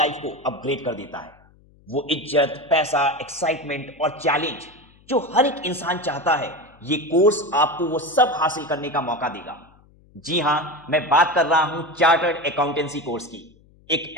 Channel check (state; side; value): noise; left; hum, 29 dB below the sound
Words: को अपग्रेड कर देता है। वो इज्जत, पैसा, एक्साइटमेंट और चैलेंज जो हर एक इंसान चाहता है, ये कोर्स आपको वो सब हासिल करने का मौका देगा। जी हां, मैं बात कर रहा हूं चार्टर्ड अकाउंटेंसी कोर्स की। एक